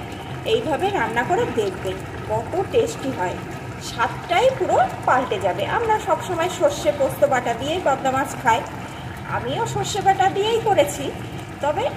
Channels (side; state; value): both; identical; correlation 1.00